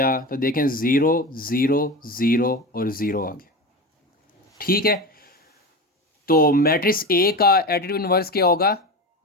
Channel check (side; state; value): both; normal; correlation 0.25